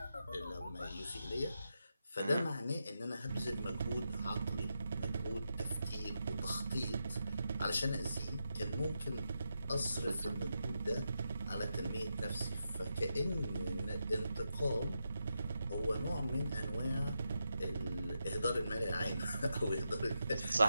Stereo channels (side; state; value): both; inverted; correlation -0.86